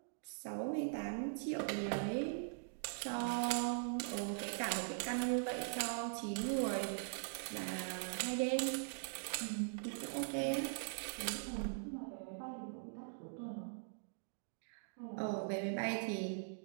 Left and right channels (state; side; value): silent; left; digital silence